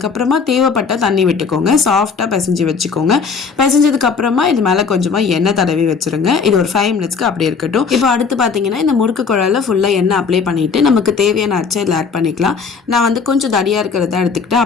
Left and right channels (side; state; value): right; quieter; 5.4 dB